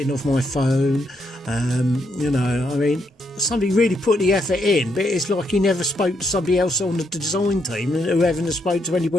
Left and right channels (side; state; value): both; normal; correlation 0.77